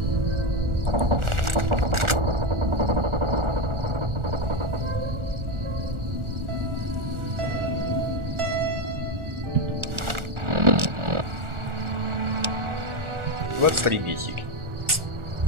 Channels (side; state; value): left; late; 1.4 ms